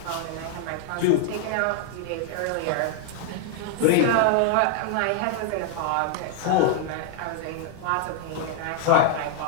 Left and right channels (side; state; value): both; different; correlation 0.00